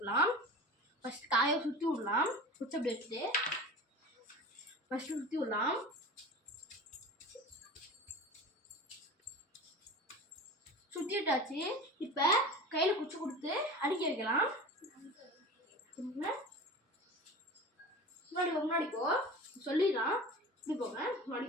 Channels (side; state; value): both; normal; correlation 0.34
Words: ஃபஸ்ட்டு காயை சுற்றி விடலாம். குச்சி அப்படி எடுத்துட்டு ஃபஸ்ட்டு சுற்றி விடலாம். சுற்றிட்டாச்சு. இப்போ கையில் குச்சி கொடுத்து அடிக்க வைக்கலாம். முன்னாடி போ சொல்லிடலாம். இப்படி போங்க, முன்னாடி